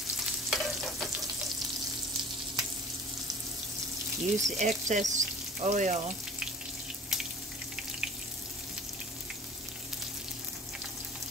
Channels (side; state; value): both; normal; correlation 0.44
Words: Use the excess oil.